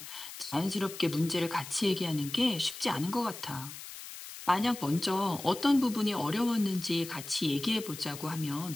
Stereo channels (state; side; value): noise; left; hiss, 12 dB below the sound